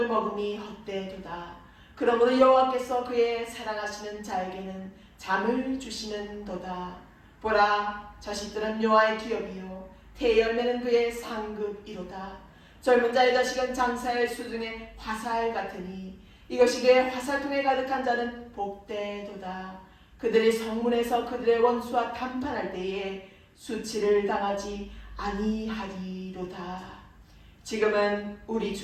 먹음이 헛되도다. 그러므로 여호와께서 그의 사랑하시는 자에게는 잠을 주시는도다. 보라, 자식들은 여호와의 기업이요 태열매는 그의 상급이로다. 젊은 자의 자식은 장사의 수중에 화살 같으니 이것이 그의 화살통에 가득한 자는 복되도다. 그들이 성문에서 그들의 원수와 담판할 때에 수치를 당하지 아니하리로다. 지금은 우리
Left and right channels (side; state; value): both; identical; correlation 1.00